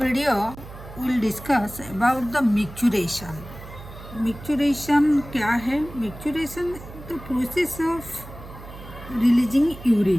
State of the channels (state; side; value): noise; right; hum, 15 dB below the sound